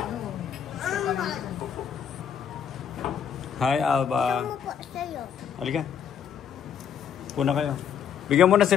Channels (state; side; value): quieter; right; 8.0 dB